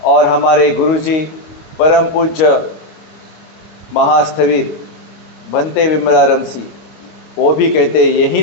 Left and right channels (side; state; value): right; late; 25 ms